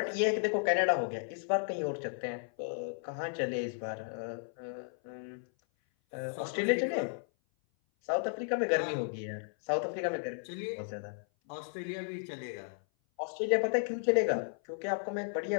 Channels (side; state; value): right; silent; 55 dB below the other